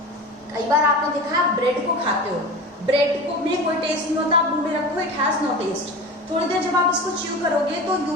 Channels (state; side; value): normal; both; correlation 0.31